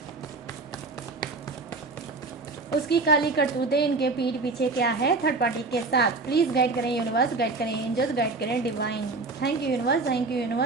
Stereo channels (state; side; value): quieter; left; 3.7 dB